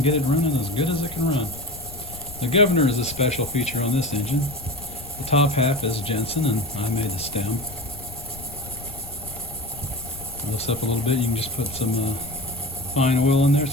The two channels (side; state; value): left; noise; rumble, 15 dB below the sound